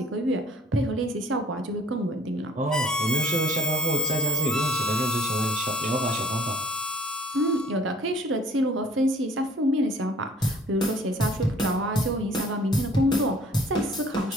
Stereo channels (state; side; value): normal; both; correlation 0.54